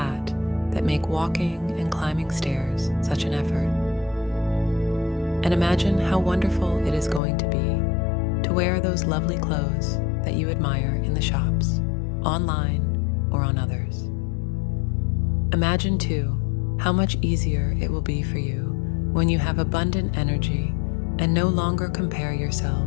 that make walking and climbing stairs such an effort. And imagine how wonderful it is going to be to wear those lovely clothes that you admire in the shops, online or on others. Imagine too how much easier it will be for you when you have abundant energy and no longer compare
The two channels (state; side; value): drops out; right; at 7.2 s